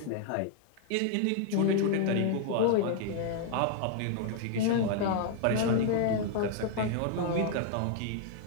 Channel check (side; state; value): both; different; correlation 0.00